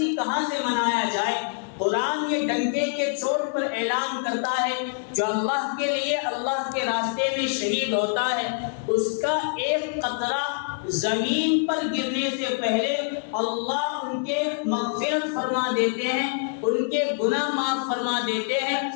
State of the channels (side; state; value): right; silent; 59 dB below the other